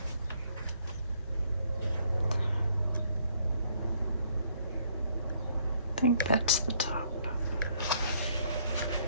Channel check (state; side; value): inverted; both; correlation -0.66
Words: I think that's the top.